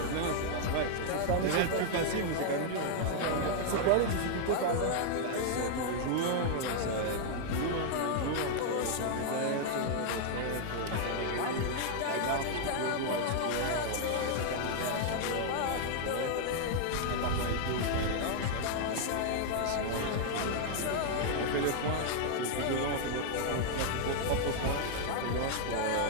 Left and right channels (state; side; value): different; both; correlation -0.01